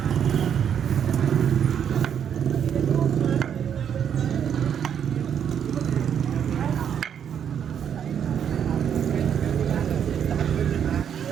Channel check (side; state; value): left; quieter; 8.5 dB